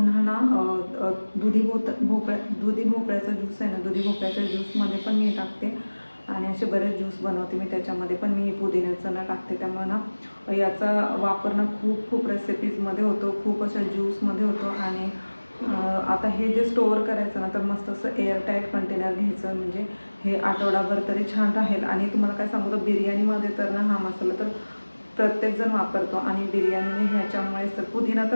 ना दुधी भोपळ्याचा ज्यूस आहे ना, दुधी भोपळ्याच्या ज्यूसमध्ये पण मी टाकते. आणि असे बरेच ज्यूस बनवते मी, त्याच्यामध्ये पण मी पुदिन्याचं ना टाकते. त्यामुळे ना याचा वापर ना खूप रेसिपीजमध्ये होतो, खूप अशा ज्यूसमध्ये होतो. आणि आता हे जे स्टोअर करायचं ना तर मस्त असं एअरटाईट कंटेनर घ्यायचं, म्हणजे हे आठवडाभर तरी छान राहील. आणि तुम्हाला काय सांगू तर बिर्याणीमध्ये तर ना हा मसाला तर प्रत्येकजण वापरतो. आणि बिर्याणीने ह्याच्यामुळेच तर पुदिना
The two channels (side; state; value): both; inverted; correlation -1.00